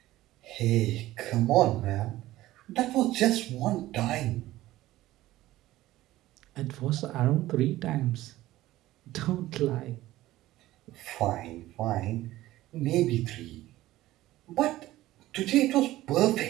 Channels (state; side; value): quieter; left; 16.1 dB